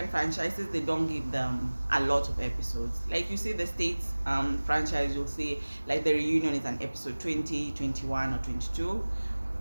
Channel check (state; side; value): inverted; both; correlation -1.00